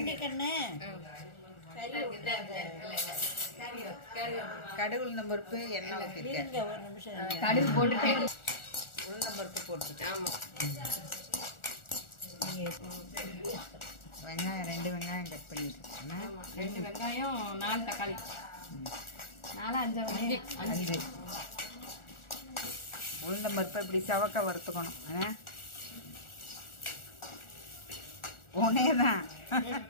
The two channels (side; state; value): right; late; 1.4 ms